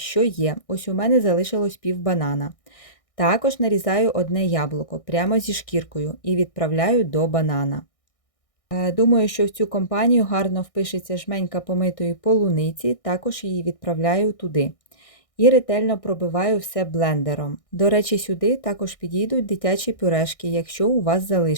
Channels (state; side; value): late; right; 1.6 ms